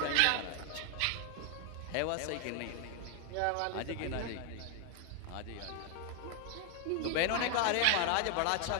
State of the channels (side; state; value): both; different; correlation 0.01